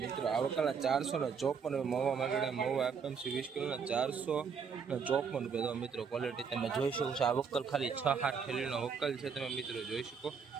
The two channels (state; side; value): quieter; left; 6.2 dB